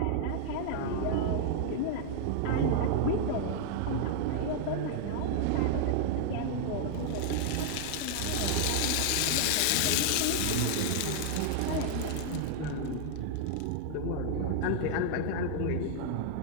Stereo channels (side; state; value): both; different; correlation 0.00